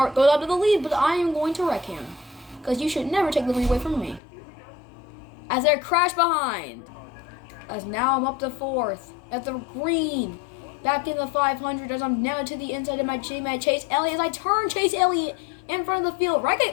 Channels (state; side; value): drops out; right; at 4.2 s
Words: goes up to the lead, but I am going to wreck him. Because you should never take the lead away from me. As they crash behind. As now I'm up to 4th. At the green. Back in the 500 as I'm now to the inside of my teammate Chase Elliott. As I turn Chase Elliott in front of the field.